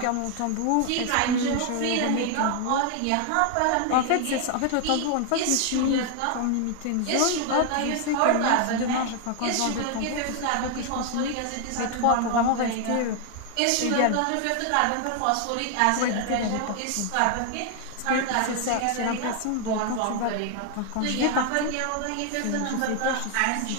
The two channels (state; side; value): different; both; correlation 0.00